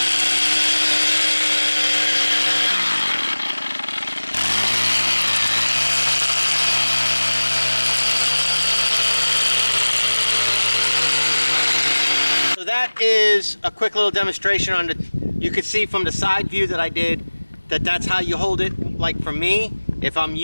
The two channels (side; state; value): both; inverted; correlation -1.00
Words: So that is a quick little demonstration on the, you could see from the side view that I did that that's how you hold it. Like for me, if I'm